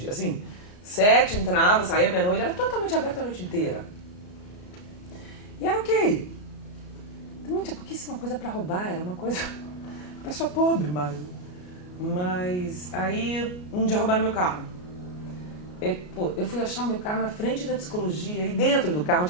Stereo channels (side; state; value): right; late; 33 ms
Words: Assim, 7 entrava, saía meia-noite, era totalmente aberta a noite inteira. E era ok. Também tinha pouquíssima coisa pra roubar, era uma coisa... Uma pessoa pobre, mas aí um dia roubaram meu carro. Eu fui achar o meu carro na frente da psicologia e dentro do carro